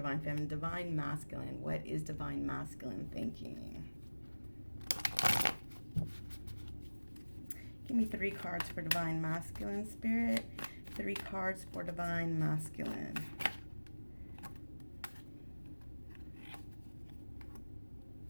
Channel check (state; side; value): inverted; both; correlation -1.00